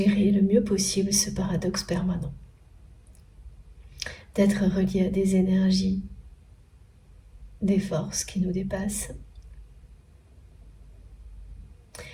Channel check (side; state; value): both; identical; correlation 1.00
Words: le mieux possible ce paradoxe permanent, d'être relié à des énergies, des forces qui nous dépassent